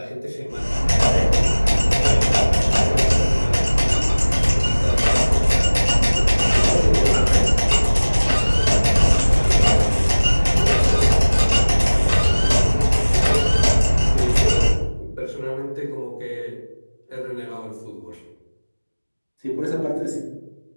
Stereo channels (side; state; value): both; inverted; correlation -1.00